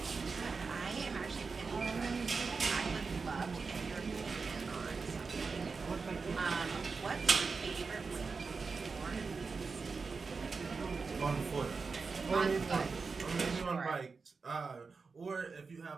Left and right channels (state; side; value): quieter; left; 4.7 dB